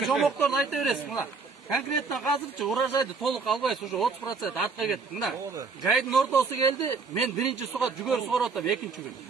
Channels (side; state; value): left; quieter; 4.6 dB